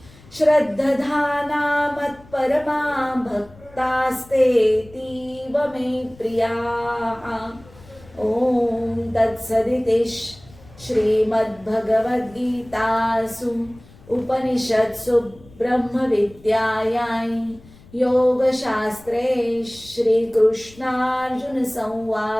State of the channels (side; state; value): left; noise; rumble, 24 dB below the sound